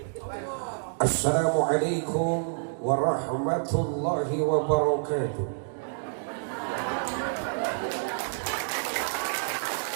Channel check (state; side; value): silent; left; digital silence